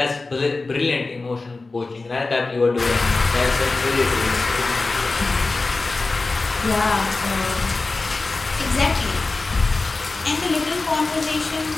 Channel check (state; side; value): quieter; right; 3.6 dB